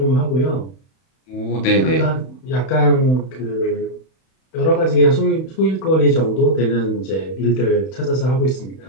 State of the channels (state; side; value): late; right; 31 ms